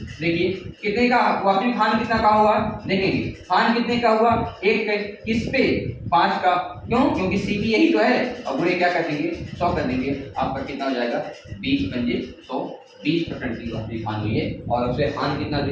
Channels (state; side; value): identical; both; correlation 1.00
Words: देखिए कितने का, वास्तविक हानि कितना का हुआ देखेंगे, हानि कितने का हुआ 1 का, किस पे 5 का। क्यों, क्योंकि सीपी यही तो है। अब बुरे क्या कर देंगे 100 कर देंगे, आपका कितना हो जाएगा 20 पंजे 100, 20% की वास्तविक हानि हुई है। और उसे हानि कितना